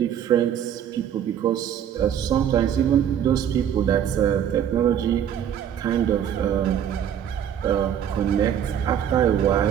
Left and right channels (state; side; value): quieter; left; 9.4 dB